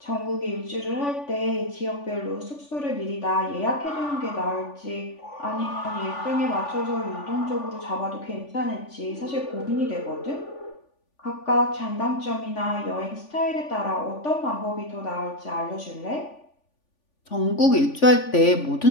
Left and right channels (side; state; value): right; late; 3.5 ms